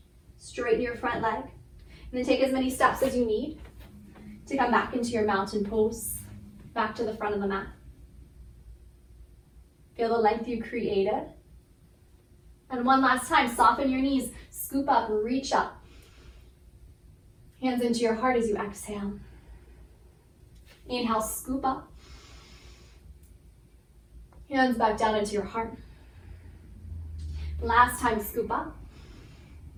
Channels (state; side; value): identical; both; correlation 1.00